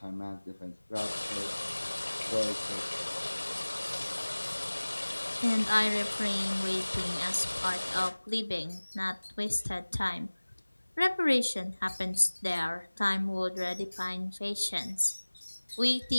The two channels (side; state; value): both; inverted; correlation -1.00